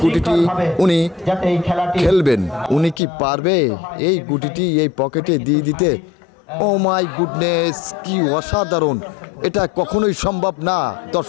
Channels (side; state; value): right; drops out; at 3.0 s